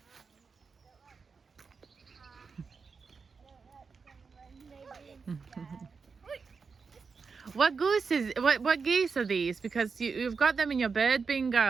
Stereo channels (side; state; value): left; quieter; 5.1 dB